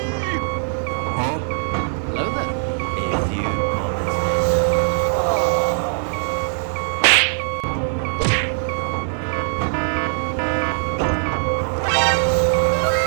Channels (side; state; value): left; silent; digital silence